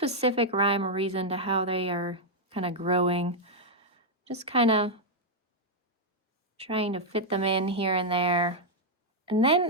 rhyme or reason to how they are kind of growing. Just kind of trying to fit them in here and there. And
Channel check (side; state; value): both; normal; correlation -0.02